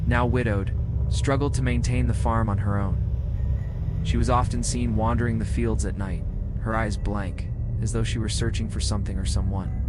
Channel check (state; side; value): identical; both; correlation 1.00